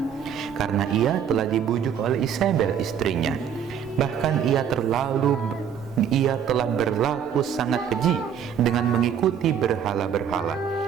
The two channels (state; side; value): quieter; left; 8.2 dB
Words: karena ia telah dibujuk oleh Isabel istrinya. Bahkan ia telah berlaku sangat keji dengan mengikuti berhala-berhala,